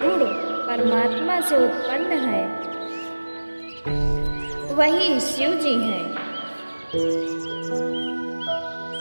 परमात्मा से उत्पन्न है वही शिव जी हैं।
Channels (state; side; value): inverted; both; correlation -1.00